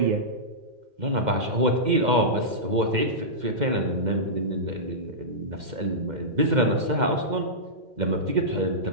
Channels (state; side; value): late; left; 2.1 ms